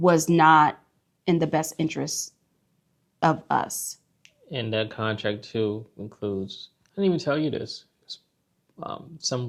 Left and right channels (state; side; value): identical; both; correlation 1.00